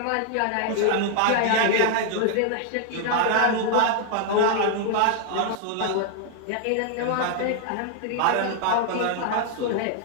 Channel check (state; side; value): different; both; correlation 0.00